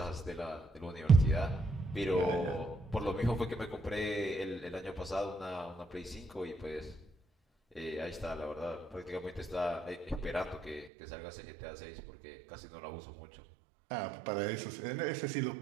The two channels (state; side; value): drops out; left; at 10.9 s